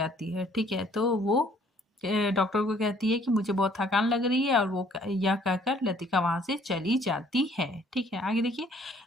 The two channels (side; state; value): both; normal; correlation 0.60